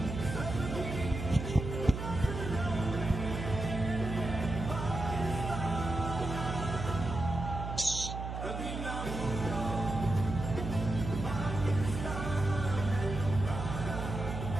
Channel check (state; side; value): noise; right; hum, 5 dB below the sound